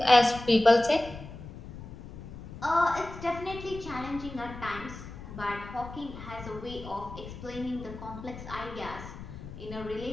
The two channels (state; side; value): noise; left; rumble, 12 dB below the sound